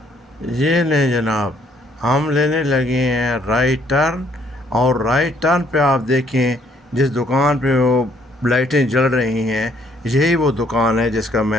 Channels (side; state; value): both; normal; correlation 0.66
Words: یہ لیں جناب، ہم لینے لگے ہیں رائٹ ٹرن، اور رائٹ ٹرن پہ آپ دیکھیں جس دکان پہ وہ لائٹیں جل رہی ہیں، یہی وہ دکان ہے جس کا